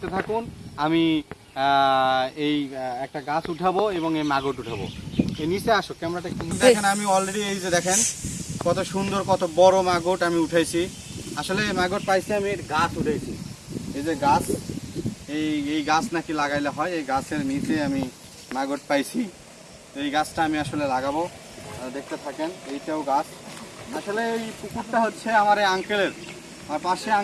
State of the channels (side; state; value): both; identical; correlation 1.00